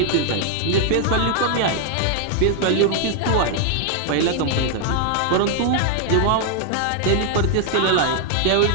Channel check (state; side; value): different; both; correlation 0.00